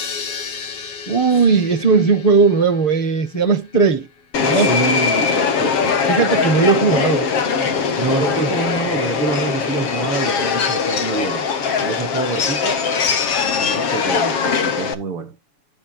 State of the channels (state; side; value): late; right; 7.5 ms